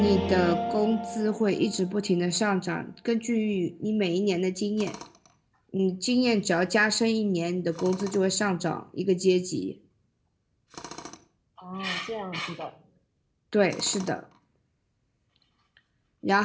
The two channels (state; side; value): identical; both; correlation 1.00